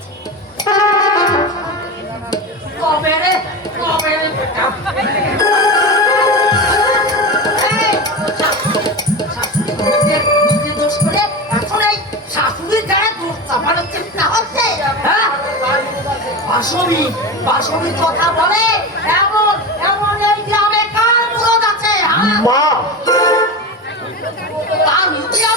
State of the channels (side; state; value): both; normal; correlation 0.24